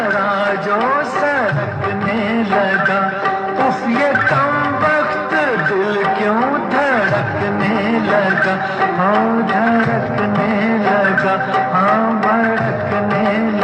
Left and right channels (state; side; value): identical; both; correlation 1.00